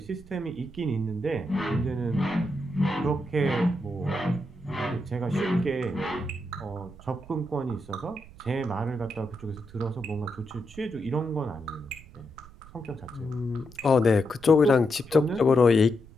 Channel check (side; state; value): right; noise; rumble, 20 dB below the sound